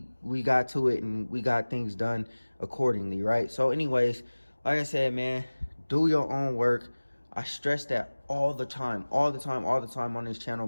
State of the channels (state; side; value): inverted; both; correlation -1.00